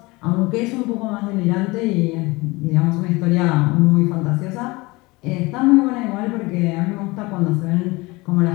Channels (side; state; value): right; quieter; 23.2 dB